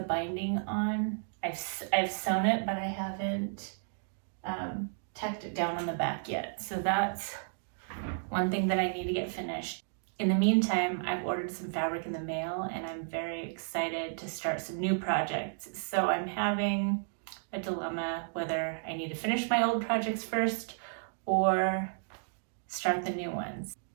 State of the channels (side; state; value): left; silent; digital silence